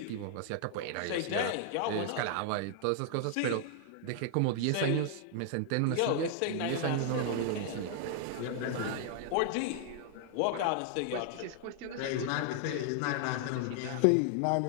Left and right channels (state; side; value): different; both; correlation -0.01